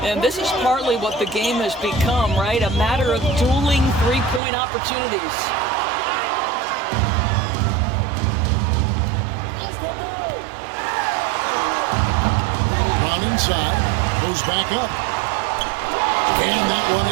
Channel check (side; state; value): left; drops out; at 4.4 s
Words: And this is partly what the game has become, right? A matter of dueling three-point opportunities. Brown inside, goes back up. And that one